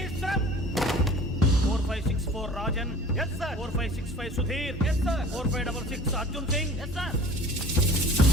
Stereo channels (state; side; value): normal; both; correlation 0.45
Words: run. 4564 Rajan. yes sir. 4565 Sudheer. yes sir. 4566 Arjun Singh. yes sir.